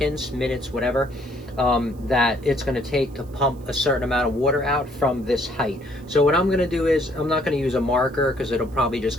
minutes, whatever, that it's going to take to pump a certain amount of water out from this height. So what I'm going to do is, I'm not going to use a marker because it'll probably just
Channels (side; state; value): right; noise; hiss, 29 dB below the sound